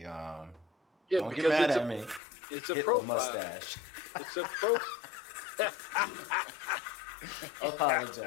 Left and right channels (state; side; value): drops out; right; at 2.2 s